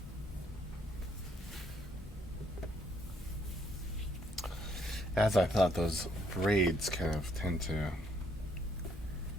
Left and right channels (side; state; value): both; normal; correlation 0.69